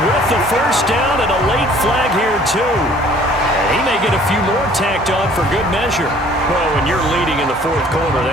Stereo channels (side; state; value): both; normal; correlation 0.55